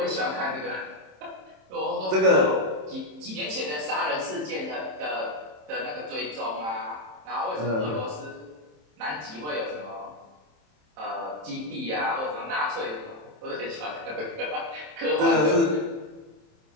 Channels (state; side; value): late; left; 27 ms